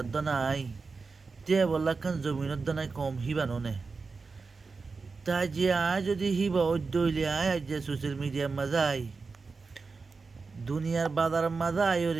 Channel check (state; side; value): quieter; left; 4.4 dB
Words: নাই তে বললা খান জমিনের দানায় কম হিবাননে তাই যে আয় যদি হিবা অদ্যইলে আয় আজ যে সোশ্যাল মিডিয়ার মাঝে আয় দুনিয়ার বাজার মাঝে আয়